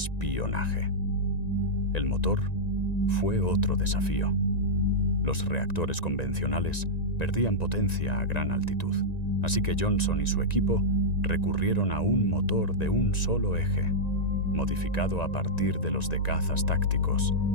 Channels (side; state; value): right; late; 1.9 ms